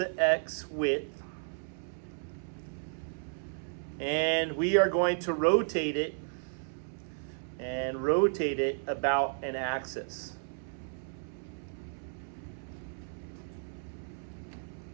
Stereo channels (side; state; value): left; silent; 55 dB below the other